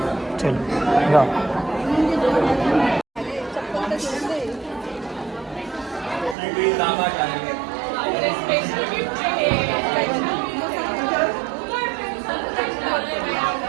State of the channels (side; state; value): left; drops out; at 6.4 s